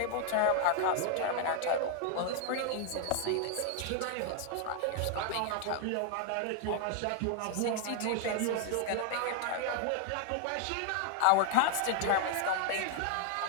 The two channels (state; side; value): different; both; correlation 0.00